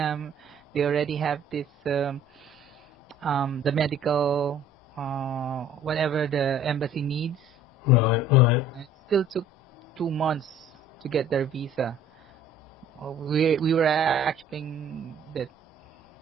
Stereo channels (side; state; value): both; normal; correlation 0.52